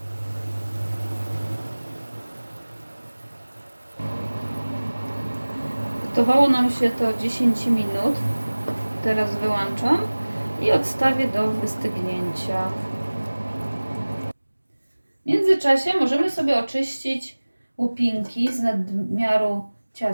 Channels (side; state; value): both; inverted; correlation -1.00